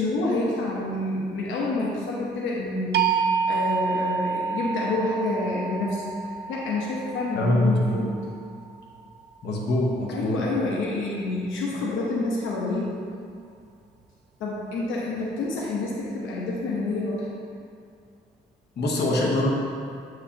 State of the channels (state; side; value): normal; both; correlation 0.59